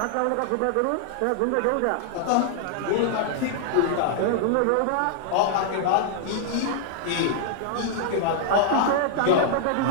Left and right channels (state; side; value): different; both; correlation -0.01